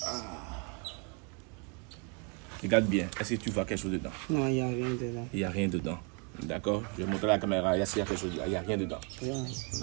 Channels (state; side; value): quieter; left; 35.8 dB